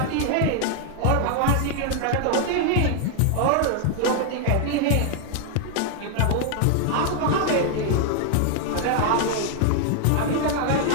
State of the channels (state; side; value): different; both; correlation 0.00